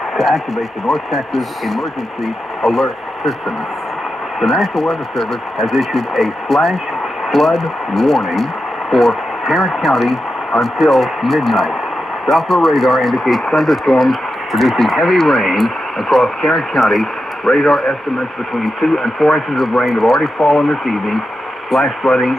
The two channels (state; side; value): normal; both; correlation 0.89